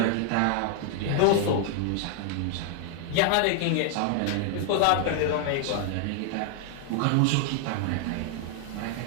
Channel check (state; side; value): different; both; correlation 0.00